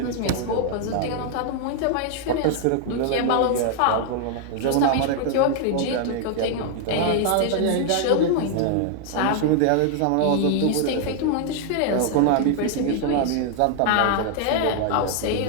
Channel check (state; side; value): different; both; correlation 0.00